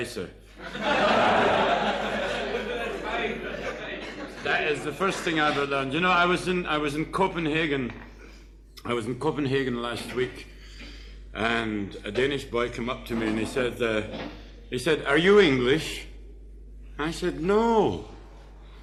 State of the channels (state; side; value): identical; both; correlation 1.00